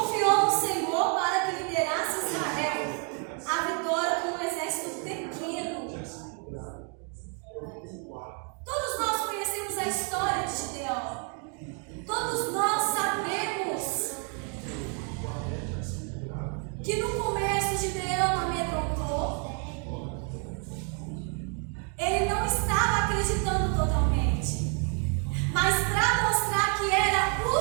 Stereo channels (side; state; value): left; quieter; 39.8 dB